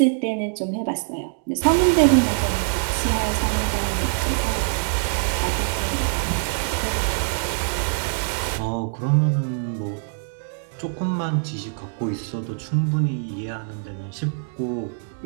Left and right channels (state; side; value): silent; left; digital silence